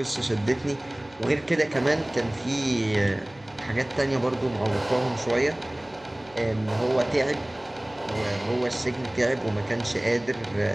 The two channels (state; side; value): noise; right; hum, 26 dB below the sound